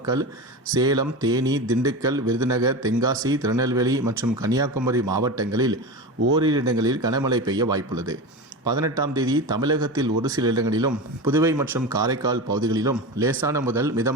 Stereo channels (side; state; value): both; normal; correlation 0.25